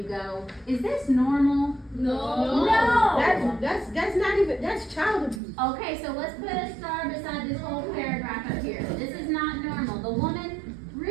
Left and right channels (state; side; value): drops out; left; at 5.4 s